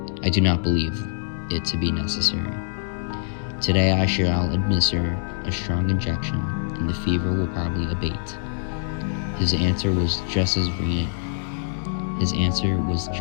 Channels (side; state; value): right; silent; 63 dB below the other